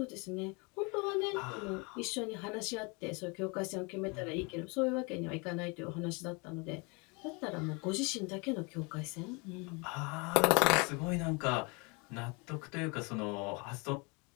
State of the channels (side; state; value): right; quieter; 30.1 dB